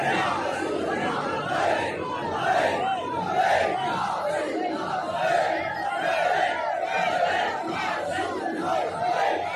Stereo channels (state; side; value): identical; both; correlation 1.00